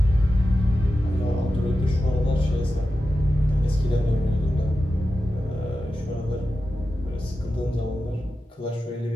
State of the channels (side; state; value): both; normal; correlation 0.92